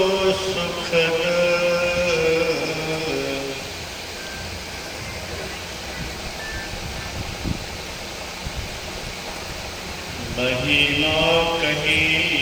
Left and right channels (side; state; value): both; identical; correlation 1.00